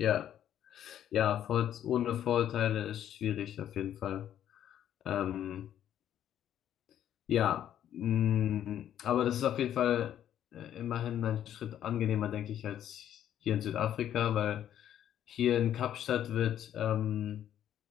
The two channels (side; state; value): right; quieter; 10.7 dB